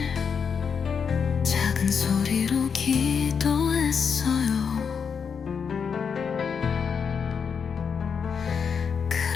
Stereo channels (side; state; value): right; quieter; 6.4 dB